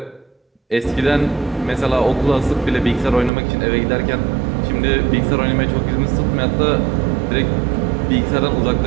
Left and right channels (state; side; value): drops out; left; at 3.3 s